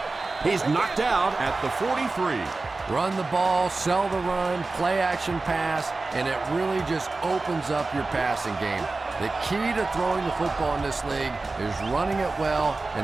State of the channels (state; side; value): quieter; left; 3.5 dB